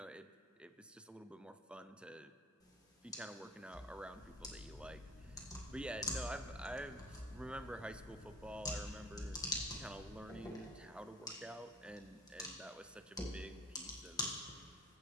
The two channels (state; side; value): normal; both; correlation 0.49